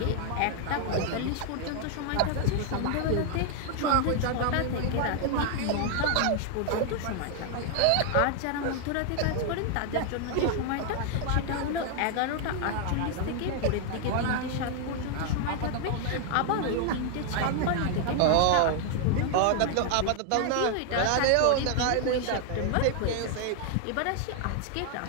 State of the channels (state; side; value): different; both; correlation 0.00